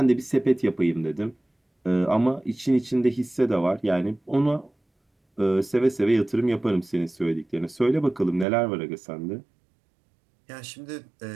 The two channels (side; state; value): left; drops out; at 8.5 s